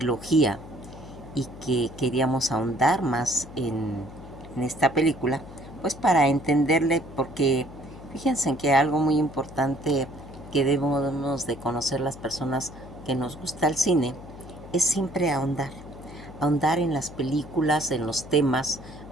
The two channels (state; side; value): noise; left; hum, 16 dB below the sound